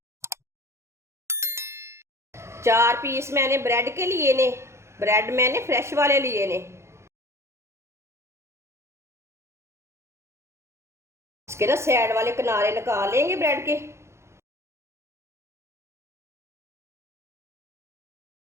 4 पीस मैंने ब्रेड के लिए ने। ब्रेड मैंने फ्रेश वाले लिए ने। इसके ना साइड वाले किनारे निकाल लेंगे ब्रेड के।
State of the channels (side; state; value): left; late; 0.13 ms